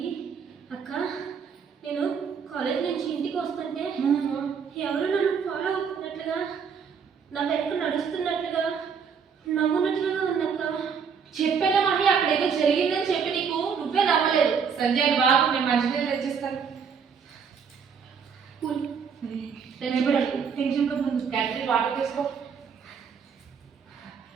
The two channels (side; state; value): left; quieter; 6.5 dB